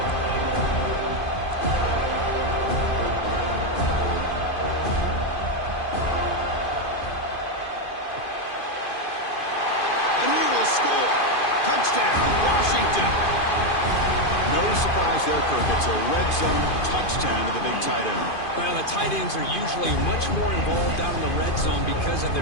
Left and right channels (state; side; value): late; right; 2.5 ms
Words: Touchdown, Washington. No surprise there, Kirk. It's a red red zone touchdown to the big tight end. Well, the tight ends are usually much more involved down in the red zone because of